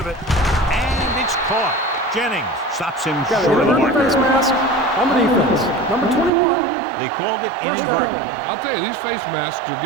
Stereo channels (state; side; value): drops out; left; at 6.3 s